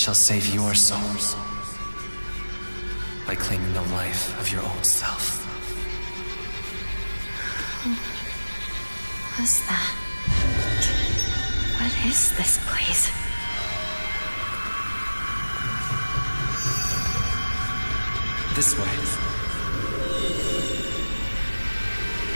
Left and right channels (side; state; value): both; inverted; correlation -1.00